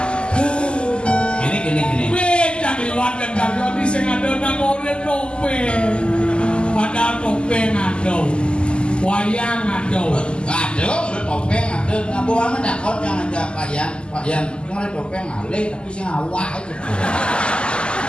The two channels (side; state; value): right; late; 0.051 ms